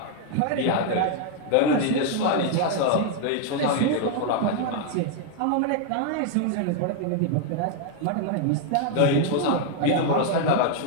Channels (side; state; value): both; different; correlation 0.00